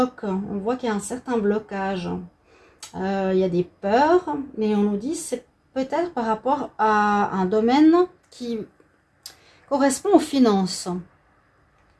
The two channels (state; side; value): identical; both; correlation 1.00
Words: On voit qu'il y a un certain blocage. Il y a des peurs. Mais on nous dit que c'est peut-être par rapport à un domaine qui correspond aux finances.